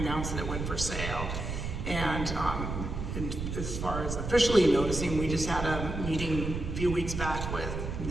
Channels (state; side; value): noise; right; rumble, 4 dB below the sound